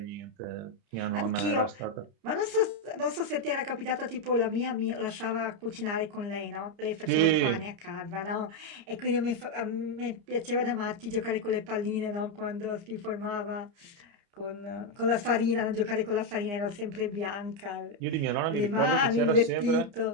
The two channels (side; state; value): left; late; 30 ms